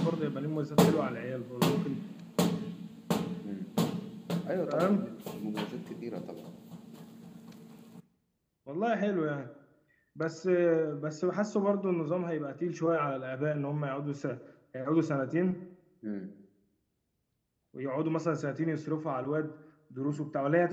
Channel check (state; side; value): identical; both; correlation 1.00